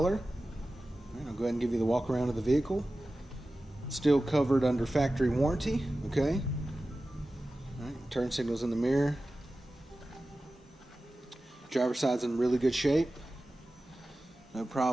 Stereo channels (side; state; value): both; normal; correlation 0.95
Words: All right, I'll go ahead and give you the walk around of the vehicle. Still covered under factory warranty. Okay. All right, turn signals in the mirror. Driver's side's in really good shape. No